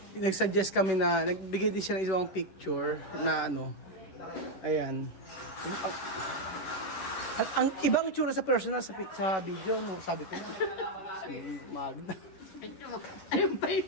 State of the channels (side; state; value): right; late; 11 ms